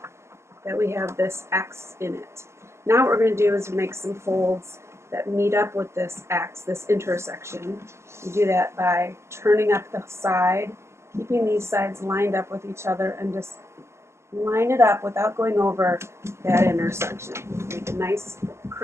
that we have this X in it. Now what we're going to do is make some folds that meet up with this X, this intersection. You do that by turning up the side, keeping these sides lined up with each other, and just line it up without going over that intersection. Make a nice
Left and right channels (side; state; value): left; late; 0.13 ms